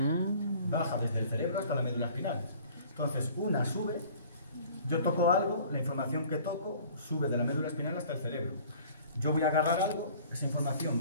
Baja desde el cerebro hasta la médula espinal. Entonces, una sube, yo toco algo, la información que toco sube de la médula espinal hasta el cerebro. Yo voy a agarrar algo, esa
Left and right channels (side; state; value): both; inverted; correlation -0.50